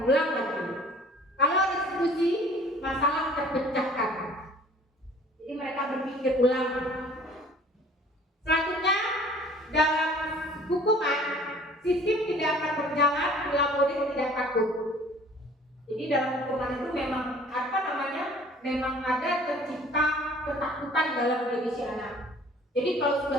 ulang lagi. Kalau restitusi, masalah terpecahkan, jadi mereka berpikir ulang. Selanjutnya, dalam hukuman, sistem tidak akan berjalan bila murid tidak takut. Jadi dalam hukuman itu memang memang ada tercipta ketakutan dalam diri si anak. Jadi kalau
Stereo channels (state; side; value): normal; both; correlation 0.51